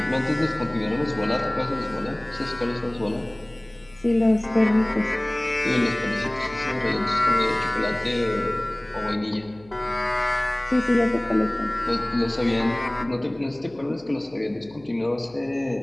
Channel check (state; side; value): noise; left; hum, 26 dB below the sound